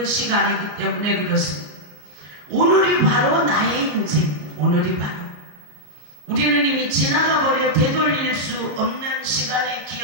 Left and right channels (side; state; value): left; late; 33 ms